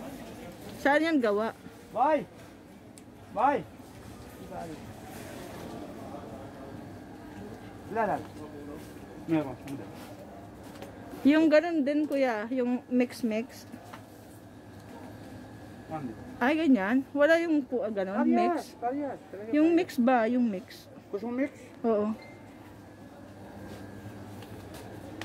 Saan yan gawa? Bye! Bye! Wala. Meron. Hindi. Yung ganun din kuya, yung mix. One din. Ay, ganyan. Wala yung ganun, mix. Parehas. Yung mix ba? Yung mix. Gusto mo mix? Oo.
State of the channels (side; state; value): both; identical; correlation 1.00